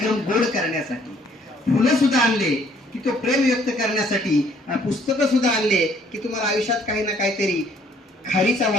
गोड करण्यासाठी, फुलं सुद्धा आणले की तो प्रेम व्यक्त करण्यासाठी, पुस्तकं सुद्धा आणले की तुम्हाला आयुष्यात काही ना काहीतरी खारीचा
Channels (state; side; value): normal; both; correlation 0.62